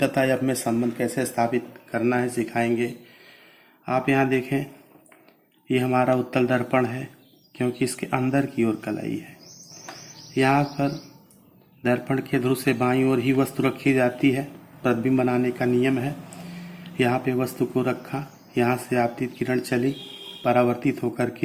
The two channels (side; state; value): both; identical; correlation 1.00